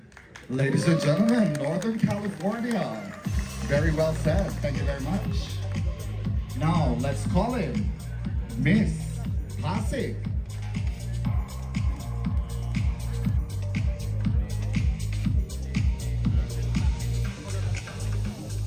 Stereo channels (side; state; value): both; identical; correlation 1.00